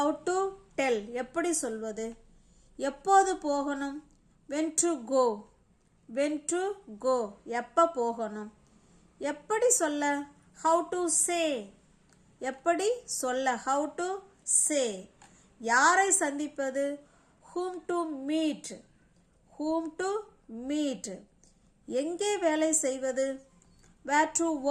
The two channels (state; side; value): identical; both; correlation 1.00